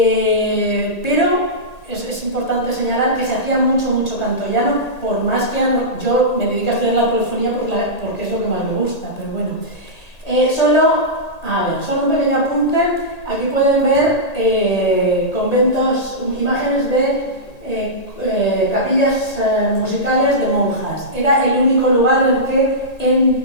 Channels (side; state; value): right; late; 1.8 ms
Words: es importante señalar que se hacía mucho canto llano, por más que yo me dedico a estudiar la polifonía porque es lo que más me gusta, pero bueno. Solo un pequeño apunte. Aquí pueden ver conventos, imágenes de capillas musicales de monjas. Era el único lugar en el que